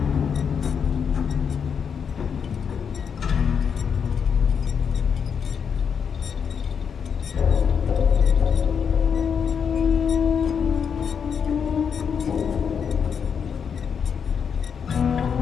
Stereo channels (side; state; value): right; quieter; 6.9 dB